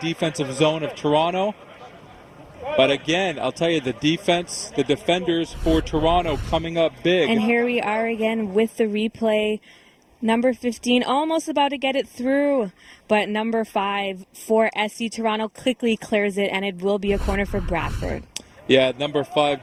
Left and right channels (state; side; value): identical; both; correlation 1.00